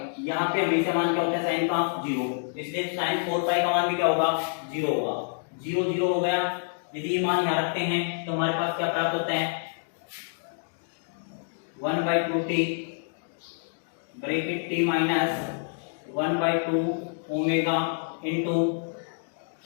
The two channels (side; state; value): right; silent; digital silence